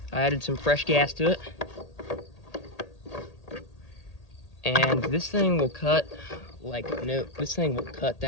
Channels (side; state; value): right; late; 1.8 ms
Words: I added some fresh gas to it. And this thing will cut like no, this thing will cut